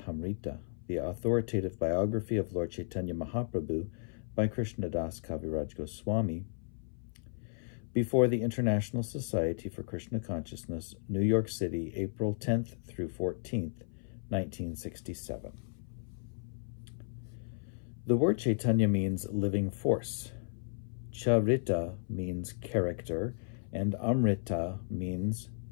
the authoritative biography of Lord Chaitanya Mahaprabhu by Krishnadas Kaviraj Goswami, before the International Society for Krishna Consciousness, New York City, April 10th through 14th, 1967. The word Chaitanya means living force. Charita means character, and Amrita means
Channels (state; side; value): silent; right; 55 dB below the other